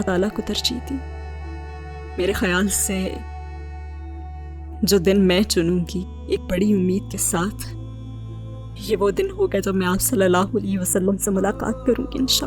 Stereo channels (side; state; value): both; identical; correlation 1.00